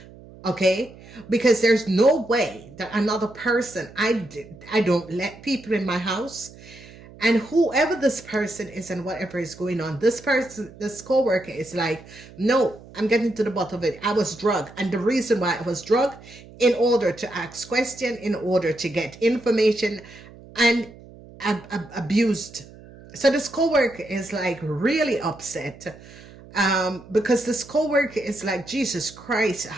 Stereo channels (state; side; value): noise; right; hum, 20 dB below the sound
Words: Okay, because there's no way that another person, I don't let people in my house. And whoever this person is and whatever is going on, this person, this coworker is like, no, I'm getting to the bottom of it. I was drugged. And the reason why I was drugged, in order to ask questions, in order to get information, and abused. So this coworker is like really upset. Because this coworker is like, Jesus Christ,